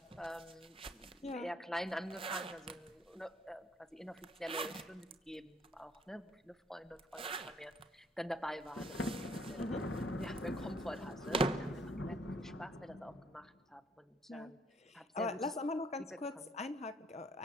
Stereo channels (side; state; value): both; normal; correlation 0.65